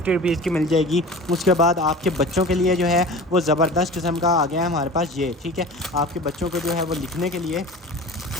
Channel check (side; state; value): both; normal; correlation 0.37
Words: रुपीज़ की मिल जाएगी। उसके बाद आपके बच्चों के लिए जो है वो ज़बरदस्त किस्म का आ गया है हमारे पास ये, ठीक है। आपके बच्चों को जो है वो लिखने के लिए